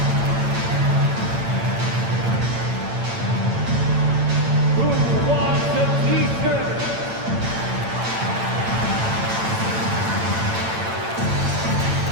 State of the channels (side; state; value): left; late; 8.9 ms